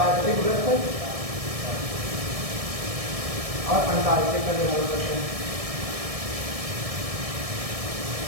वृत्त और अंटार्कटिक का निर्धारण करते हैं।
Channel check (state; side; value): late; left; 1.7 ms